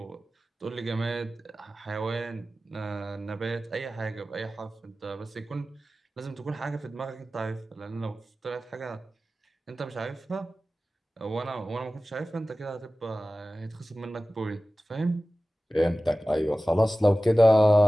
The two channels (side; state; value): both; normal; correlation 0.96